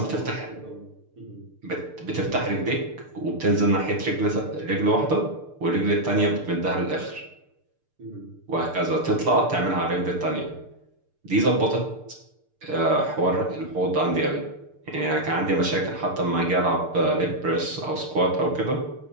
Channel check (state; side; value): late; left; 6.7 ms